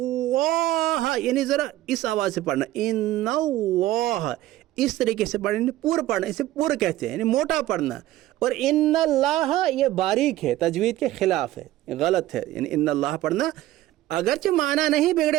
یعنی ذرا اس آواز سے پڑھنا، ان اللہ، اس طریقے سے پڑھنا، پور پڑھنا، اسے پور کہتے ہیں، یعنی موٹا پڑھنا. اور ان اللہ یہ باریک ہے، تجوید کے خلاف ہے، غلط ہے، یعنی ان اللہ پڑھنا اگرچہ معنی نہیں بگڑے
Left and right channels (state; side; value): quieter; left; 15.1 dB